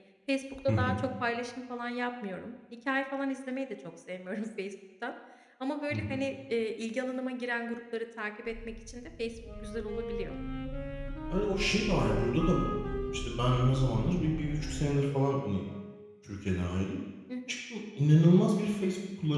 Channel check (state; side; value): identical; both; correlation 1.00